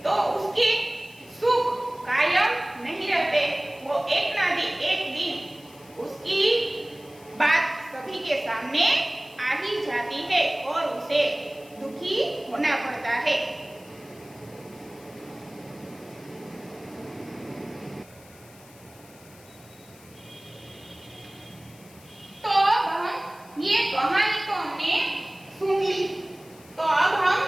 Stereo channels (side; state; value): left; noise; hiss, 24 dB below the sound